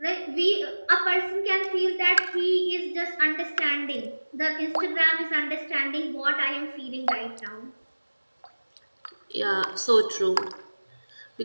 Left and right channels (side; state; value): both; inverted; correlation -1.00